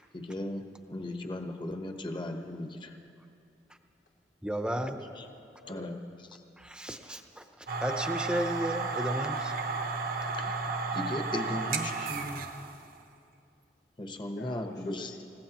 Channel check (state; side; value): normal; both; correlation 0.47